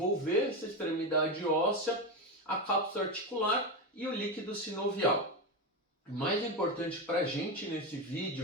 essa extremidade óssea, a cápsula articular e o líquido sinovial. O mais importante para a gente nesse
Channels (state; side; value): normal; both; correlation 0.14